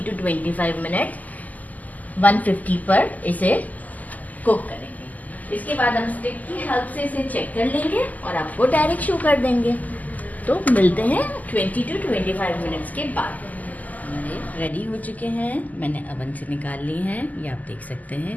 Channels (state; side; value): late; right; 0.079 ms